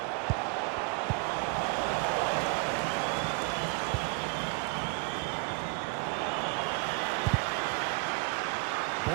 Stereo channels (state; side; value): quieter; left; 29.1 dB